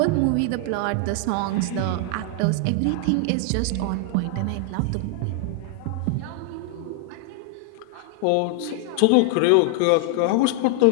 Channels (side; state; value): both; different; correlation 0.00